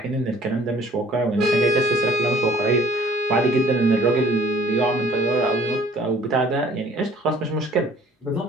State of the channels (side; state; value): both; normal; correlation 0.54